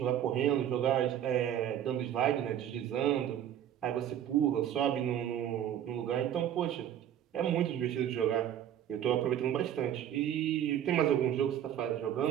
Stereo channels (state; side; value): quieter; left; 10.4 dB